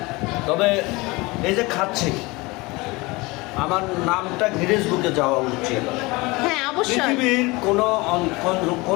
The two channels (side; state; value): right; quieter; 23.6 dB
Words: তবে এই যে খাচ্ছি আমার নামটা গিনেস বুকে যাওয়া উচিত। হ্যাঁ অবশ্যই। পৃথিবীর